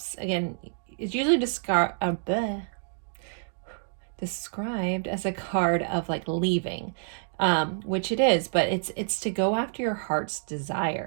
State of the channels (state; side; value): silent; left; digital silence